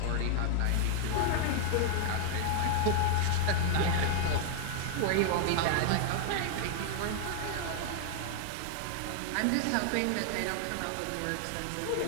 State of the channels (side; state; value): both; different; correlation 0.00